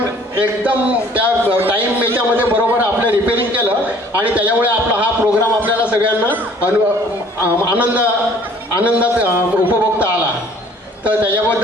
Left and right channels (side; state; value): both; normal; correlation 0.55